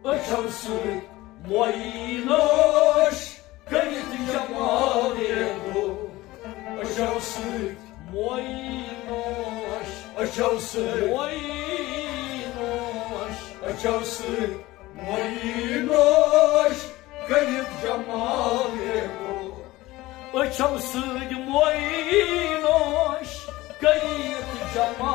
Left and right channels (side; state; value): right; quieter; 18.5 dB